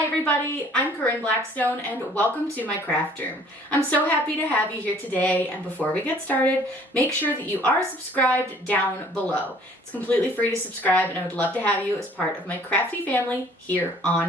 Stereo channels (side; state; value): both; normal; correlation 0.56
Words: everybody, I'm Corinne Blackstone and welcome to my craft room. I'm so happy to have you here today, and before we get started, make sure that you are subscribed down below. It's completely free to subscribe and I would love to have you as part of my crafty family here